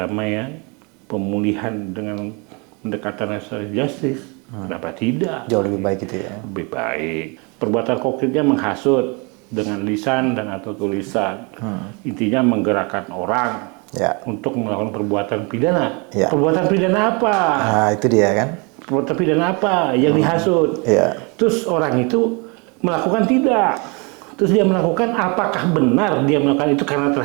pemulihan dengan pendekatan restoratif justice, kenapa tidak? Jauh lebih baik itu ya. Lebih baik. Perbuatan konkretnya menghasut dengan lisan dan atau tulisan. Intinya menggerakkan orang Ya. untuk melakukan perbuatan pidana. Ya. Perbuatan pidana apa? Nah, itu dia kan. Perbuatan pidana apa yang dihasut? Ya. Terus orang itu melakukan tidak. Terus dia melakukan, apakah benar dia melakukan itu karena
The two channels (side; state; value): left; quieter; 31.1 dB